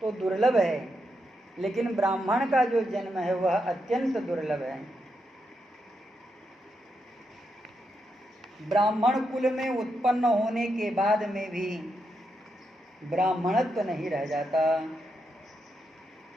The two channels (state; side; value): normal; both; correlation 0.83